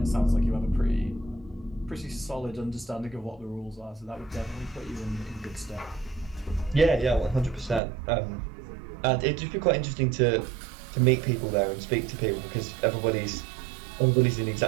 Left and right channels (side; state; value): left; drops out; at 7.8 s